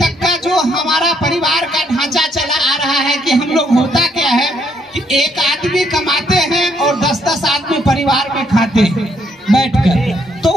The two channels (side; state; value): both; normal; correlation 0.71